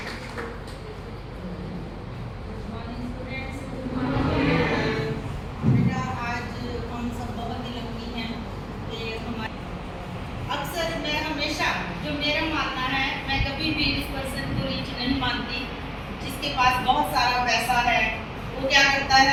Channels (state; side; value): identical; both; correlation 1.00